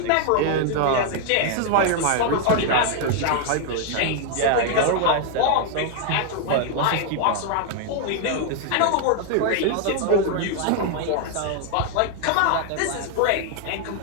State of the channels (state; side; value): different; both; correlation 0.00